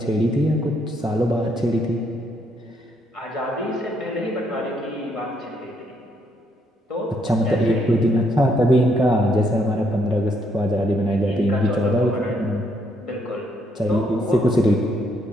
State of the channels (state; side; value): normal; both; correlation 0.73